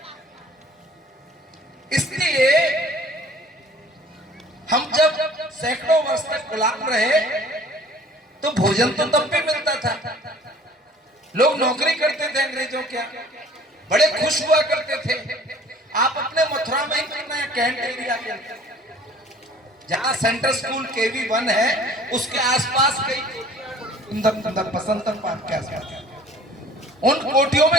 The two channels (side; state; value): both; normal; correlation 0.51